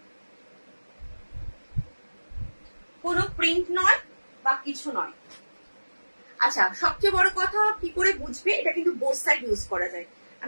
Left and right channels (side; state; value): both; inverted; correlation -1.00